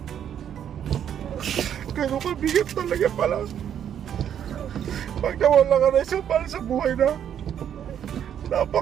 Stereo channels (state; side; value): quieter; left; 9.3 dB